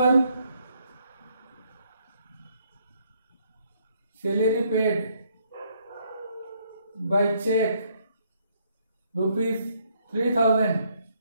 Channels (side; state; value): both; inverted; correlation -0.70